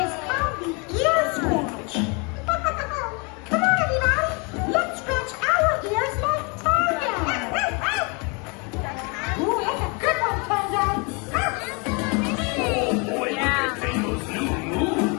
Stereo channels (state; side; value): quieter; right; 31.6 dB